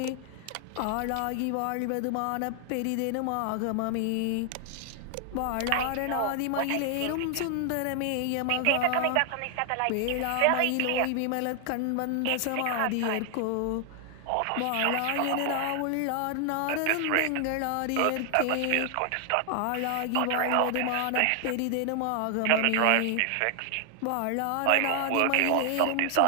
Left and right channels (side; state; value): both; different; correlation 0.00